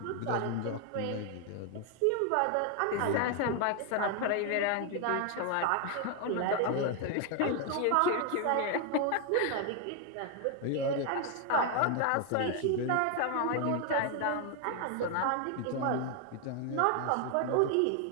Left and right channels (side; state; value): both; different; correlation 0.01